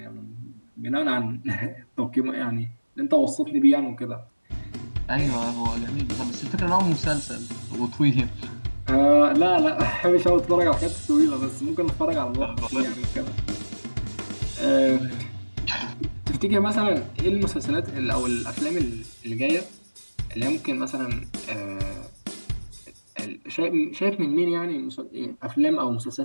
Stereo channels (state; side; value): inverted; both; correlation -1.00